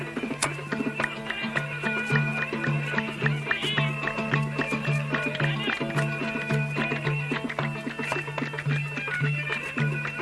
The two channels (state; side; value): identical; both; correlation 1.00